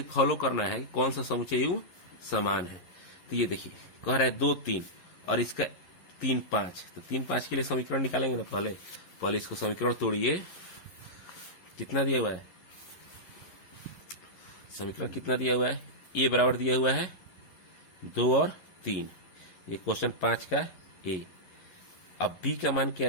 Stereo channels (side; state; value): right; late; 11 ms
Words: फॉलो करना है, कौन सा समुच्चय युग्म समान है? तो ये देखिए कह रहा है 2, 3 और इसका 3, 5। तो 3, 5 के लिए समीकरण निकालेंगे ना। पहले इसको समीकरण तोड़िए। कितना दिया हुआ है? समीकरण कितना दिया हुआ है? ए बराबर दिया हुआ है 2 और 3। ये क्वेश्चन 5 का ए। अब बी का मान क्या